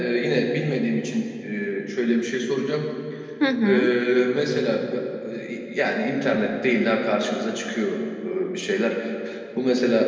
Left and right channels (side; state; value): both; identical; correlation 1.00